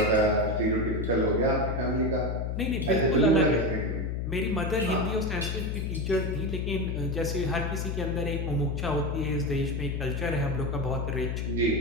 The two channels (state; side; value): noise; left; hum, 1 dB below the sound